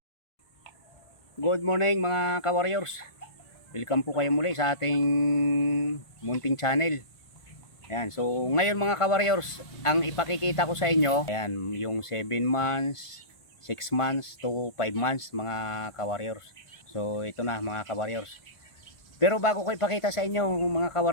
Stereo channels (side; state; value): right; late; 1.5 ms